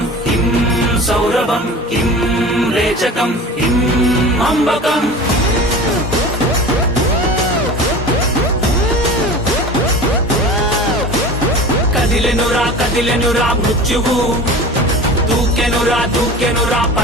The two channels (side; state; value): both; normal; correlation 0.36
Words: కిం సౌరభం కిం రేచకం కిం అంబకం. కదిలెనురా మృత్యువు, దూకెనురా